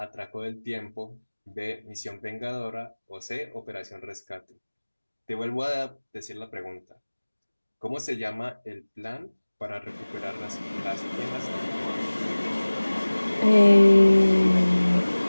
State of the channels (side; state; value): both; inverted; correlation -1.00